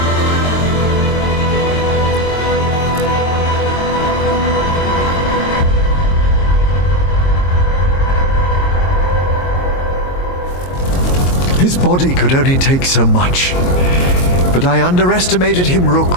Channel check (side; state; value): right; late; 22 ms